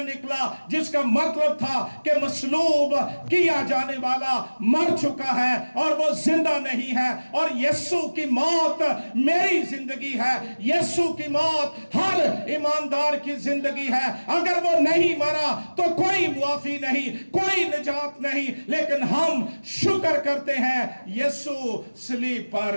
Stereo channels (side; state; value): both; inverted; correlation -1.00